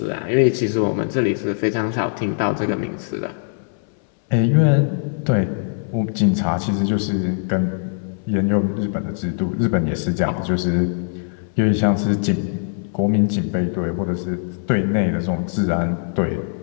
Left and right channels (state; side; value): silent; right; 65 dB below the other